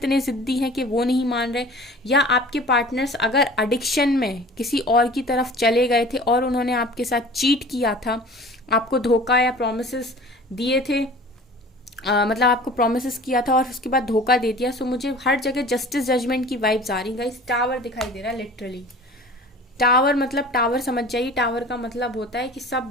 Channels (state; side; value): normal; both; correlation 0.43